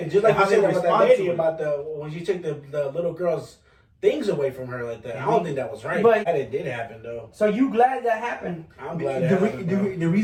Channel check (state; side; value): identical; both; correlation 1.00